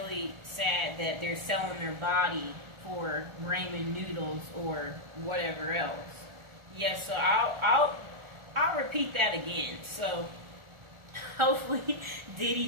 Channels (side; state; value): left; late; 1.4 ms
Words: sad that they're selling their body for ramen noodles or whatever else. Yeah, so I'll repeat that again. So hopefully